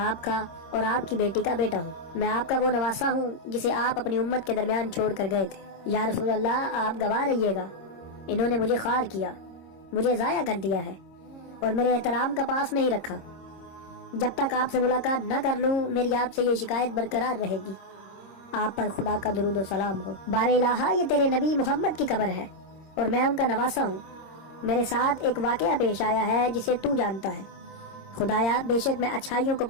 کا اور آپ کی بیٹی کا بیٹا ہوں، میں آپ کا وہ نواسا ہوں جسے آپ اپنی امت کے درمیان چھوڑ کر گئے تھے۔ یا رسول اللہ، آپ گواہ رہیے گا، انہوں نے مجھے خوار کیا، مجھے ضائع کر دیا ہے اور میرے احترام کا پاس نہیں رکھا۔ جب تک آپ سے ملاقات نہ کر لوں میری آپ سے یہ شکایت برقرار رہے گی۔ آپ پر خدا کا درود و سلام ہو۔ بار الہ، یہ تیرے نبی محمد کی قبر ہے اور میں ان کا نواسا ہوں۔ میرے ساتھ ایک واقعہ پیش آیا ہے جسے تو جانتا ہے۔ خدایا، بے شک میں اچھائیوں کو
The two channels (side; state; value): right; late; 26 ms